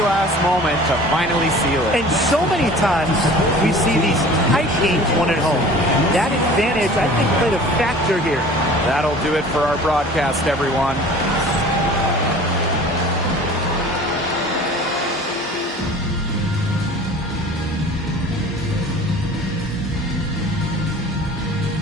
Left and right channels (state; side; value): normal; both; correlation 0.44